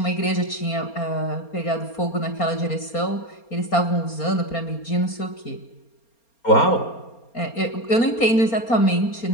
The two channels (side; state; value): right; late; 4.3 ms